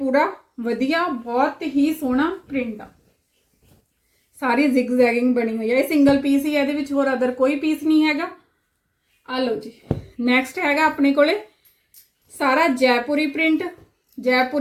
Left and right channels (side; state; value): both; identical; correlation 1.00